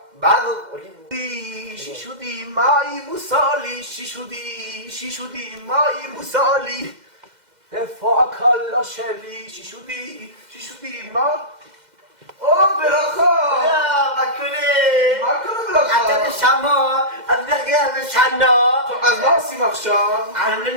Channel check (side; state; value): left; late; 2.1 ms